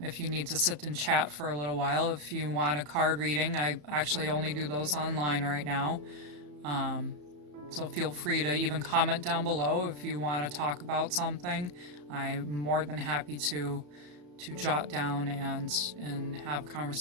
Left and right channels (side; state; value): left; late; 34 ms